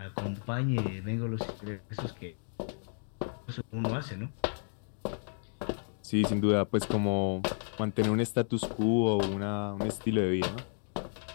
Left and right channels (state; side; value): silent; right; digital silence